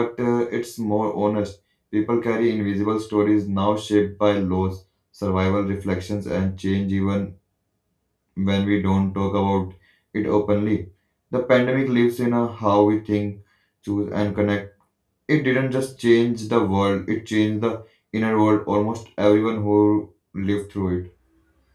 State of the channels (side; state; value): both; identical; correlation 1.00